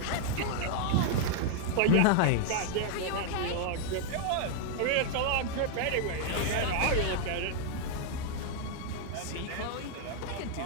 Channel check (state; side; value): different; both; correlation 0.00